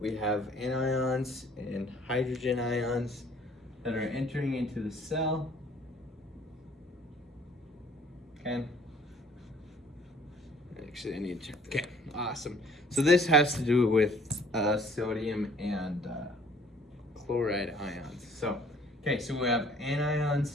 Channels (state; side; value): normal; both; correlation 0.55